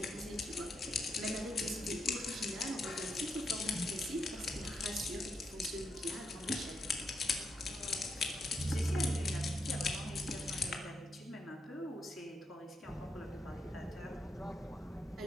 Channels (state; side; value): normal; both; correlation 0.81